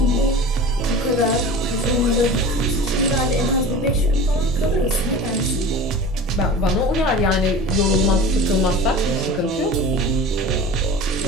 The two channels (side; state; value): both; normal; correlation 0.36